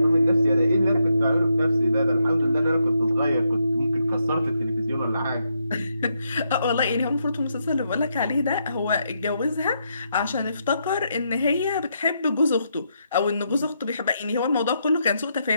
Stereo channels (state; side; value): inverted; both; correlation -0.80